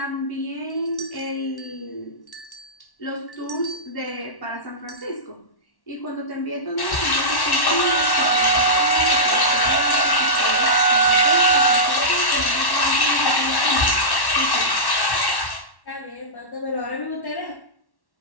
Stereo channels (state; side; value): late; right; 1.1 ms